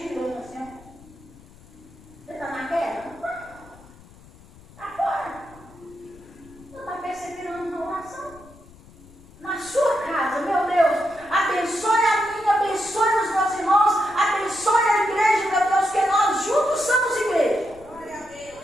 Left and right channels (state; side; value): noise; left; rumble, 23 dB below the sound